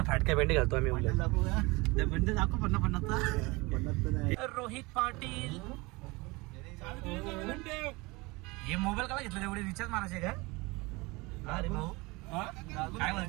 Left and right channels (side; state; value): left; quieter; 24.3 dB